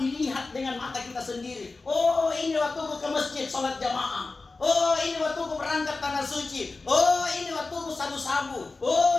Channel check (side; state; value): right; quieter; 3.7 dB